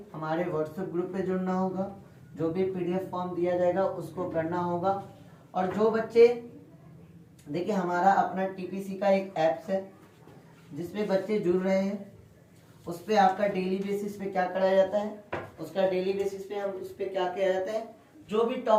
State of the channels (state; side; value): identical; both; correlation 1.00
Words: हमारे व्हाट्सएप ग्रुप पे जुड़ना होगा, जो भी PDF फॉर्म दिया जाएगा उसको करना होगा। और जो बच्चे, देखिए हमारा अपना TPC का एक ऐप्स है जिसपे बच्चे जुड़ रहे हैं, उस पर आपका डेली बेसिस पे क्या कराया जाता है, उसका डेली बेसिस पे हम उस पर क्या किया जाता है, जो भी